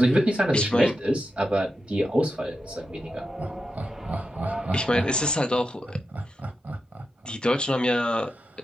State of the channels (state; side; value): normal; both; correlation 0.88